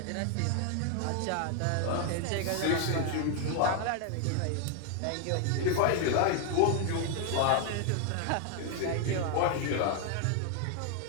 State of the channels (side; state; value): both; different; correlation 0.00